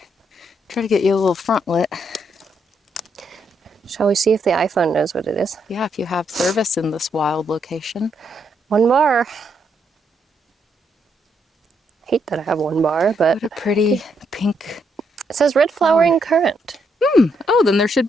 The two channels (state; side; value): normal; both; correlation 0.76